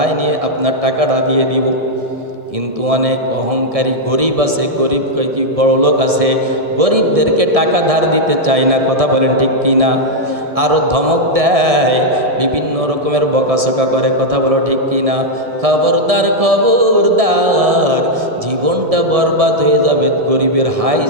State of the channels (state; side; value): late; left; 1.7 ms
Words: নিয়ে আপনার টাকাটা দিয়ে দিব। কিন্তু অনেক অহংকারী গরিব আছে, গরিব কি বড় লোক আছে, গরিবদেরকে টাকা ধার দিতে চায় না। কথা বলেন ঠিক কি না? আরও ধমক দেয়, বিভিন্ন রকমের বকাসকা করে। কথা বলো ঠিক কি না? খবরদার, খবরদার, জীবনটা বরবাদ হয়ে যাবে, গরিবের হাই